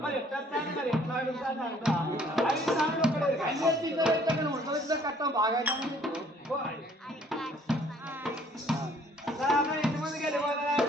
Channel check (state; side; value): normal; both; correlation 0.59